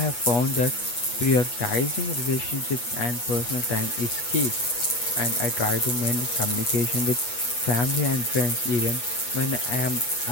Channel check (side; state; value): right; late; 8.2 ms